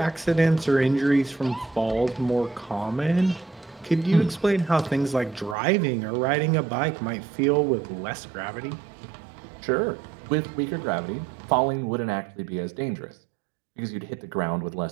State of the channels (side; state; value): left; drops out; at 5.6 s